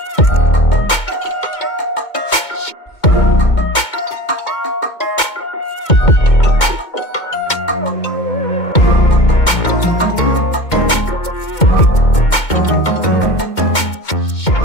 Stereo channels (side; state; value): right; late; 2.2 ms